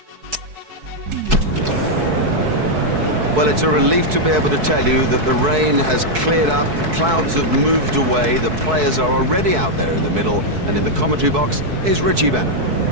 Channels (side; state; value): left; late; 4.6 ms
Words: Well, it's a relief to be able to tell you that the rain has cleared up, the clouds have moved away, the players are already out there in the middle, and in the commentary box is Richie Bennett.